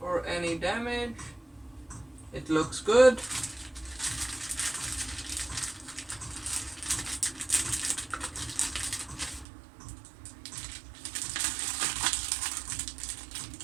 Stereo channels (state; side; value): drops out; left; at 9.5 s